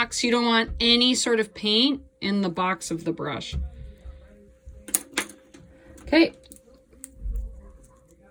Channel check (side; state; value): both; identical; correlation 1.00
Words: you don't want any sort of paint in the box of the brush. Okay.